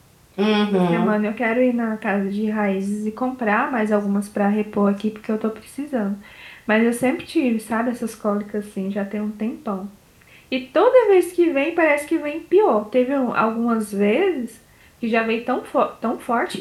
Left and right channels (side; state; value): both; identical; correlation 1.00